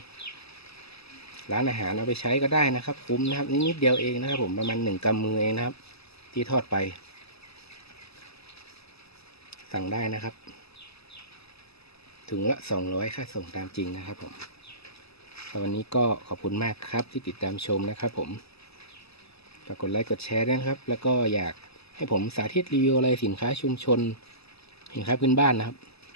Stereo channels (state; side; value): late; right; 0.78 ms